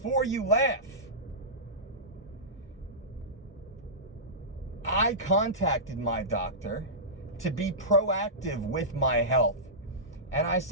you laugh, I contacted my doctor to be proactive with my health. And I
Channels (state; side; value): normal; both; correlation -0.16